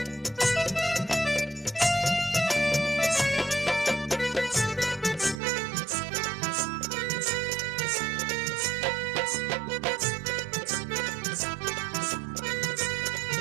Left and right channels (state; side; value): drops out; left; at 5.4 s